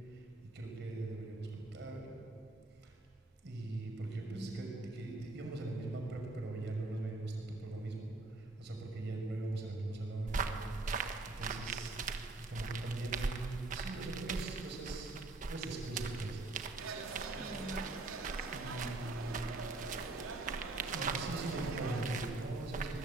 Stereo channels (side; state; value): left; quieter; 3.0 dB